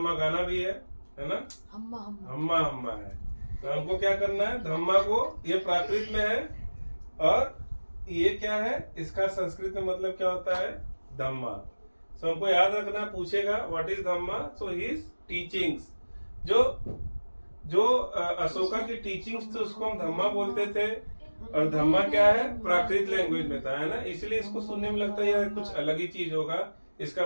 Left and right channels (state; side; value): inverted; both; correlation -1.00